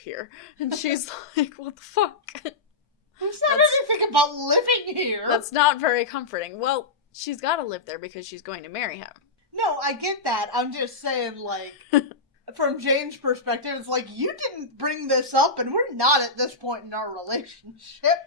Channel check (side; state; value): right; quieter; 3.6 dB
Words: And she's like, what the fuck? Who said anything about living here? That's not very comforting. Well, she's gotta live there because she's going to marry him. No, I get that. I'm just saying, from Jane's perspective, it's you didn't bring this up and we're not at this point in our relationship.